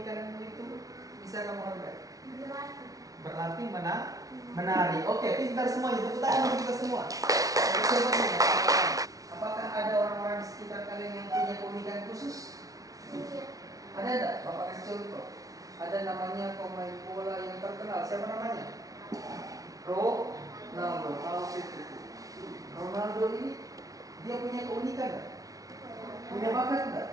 itu bisa kamu hargai? Berlatih menari. Oke, pintar semuanya. Tepuk tangan untuk kita semua. Apakah ada orang-orang di sekitar kalian yang punya keunikan khusus? Ada enggak? Bapak kasih contoh. Ada namanya pemain bola yang terkenal. Siapa namanya? Ronaldo. Ronaldo ini dia punya keunikan enggak? Punya bakat enggak?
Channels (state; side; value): late; left; 0.18 ms